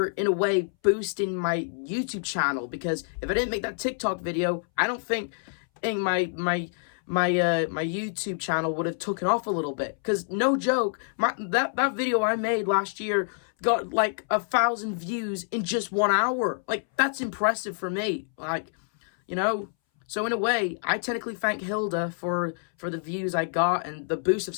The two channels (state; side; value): silent; right; 60 dB below the other